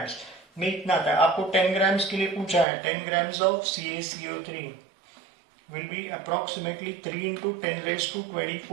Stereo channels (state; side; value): drops out; left; at 2.7 s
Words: में इतना आता है. आपको 10 ग्राम्स के लिए पूछा है. 10 grams of CaCO3 will be approximately 3 into 10 raised to